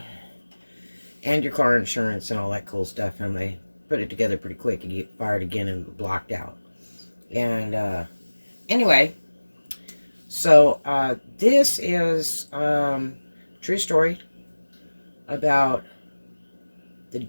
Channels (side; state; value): both; inverted; correlation -1.00